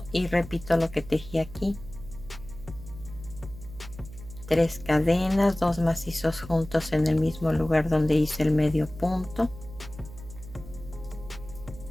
y repito lo que tejí aquí. 3 cadenas, 2 macizos juntos en el mismo lugar donde hice el medio punto.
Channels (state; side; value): noise; right; hum, 15 dB below the sound